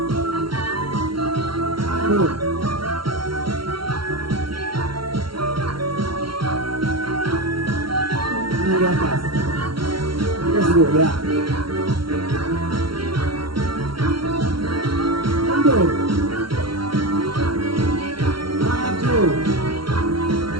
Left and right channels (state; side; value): late; left; 0.73 ms